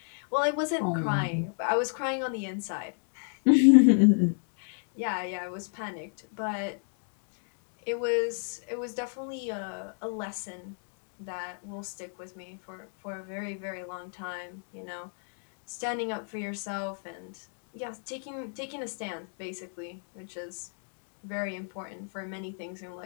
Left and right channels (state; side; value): silent; right; 57 dB below the other